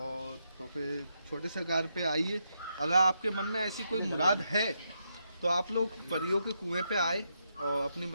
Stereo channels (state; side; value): inverted; both; correlation -0.81